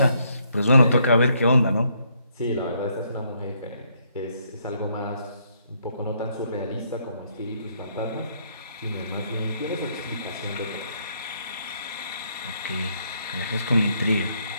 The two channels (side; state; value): both; inverted; correlation -0.72